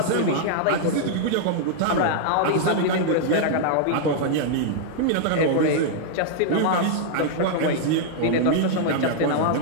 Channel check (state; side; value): different; both; correlation -0.01